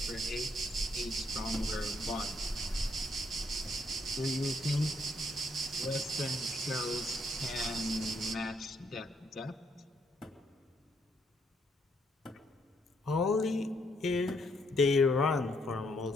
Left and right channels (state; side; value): normal; both; correlation 0.73